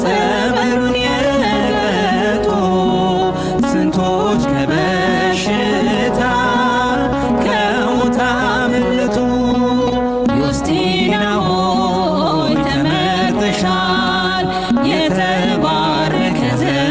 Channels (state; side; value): noise; left; hum, 18 dB below the sound